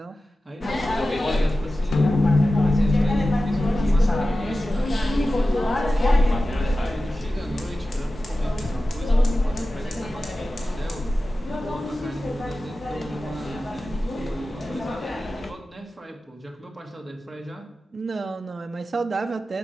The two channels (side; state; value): both; normal; correlation 0.94